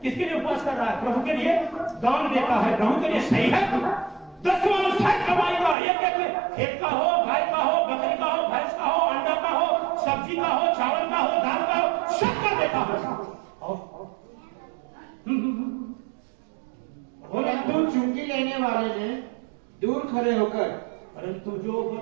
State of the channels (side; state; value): left; drops out; at 5.8 s